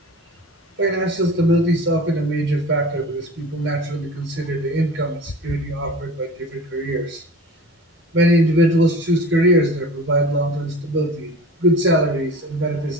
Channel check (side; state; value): both; normal; correlation 0.38